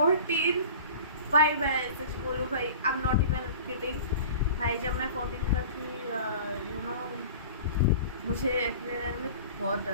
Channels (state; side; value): inverted; both; correlation -0.40